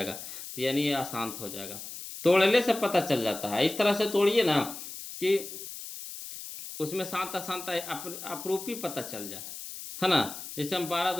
तो यानी ये अशांत हो जाएगा। तोड़ने से पता चल जाता है, इस तरह से तोड़िए ना कि उसमें शांत अशांत अपरूपी पता चल जाए, है ना। जैसे हम 12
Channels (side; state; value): left; noise; hiss, 10 dB below the sound